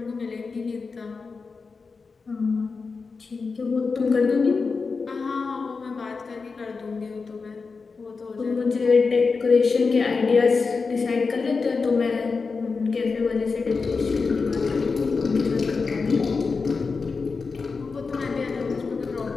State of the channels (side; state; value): right; quieter; 4.6 dB